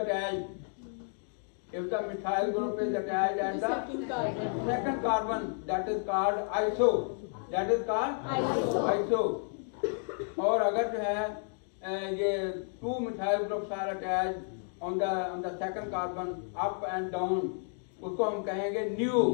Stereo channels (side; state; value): right; silent; 57 dB below the other